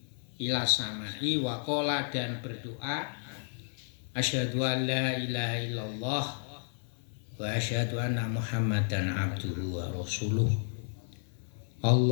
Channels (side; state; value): right; silent; 56 dB below the other